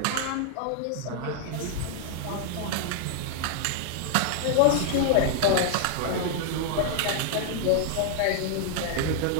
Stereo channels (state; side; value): different; both; correlation -0.01